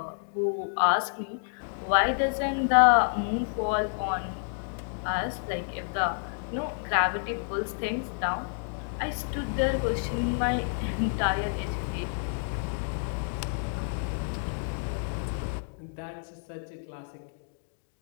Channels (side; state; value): right; silent; digital silence